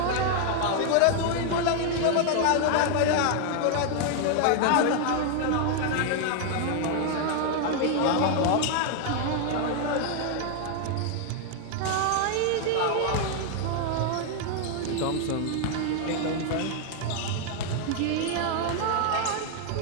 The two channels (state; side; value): different; both; correlation 0.00